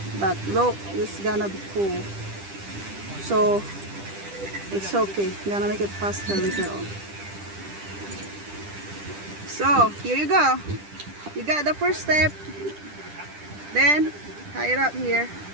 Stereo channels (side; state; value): left; late; 10 ms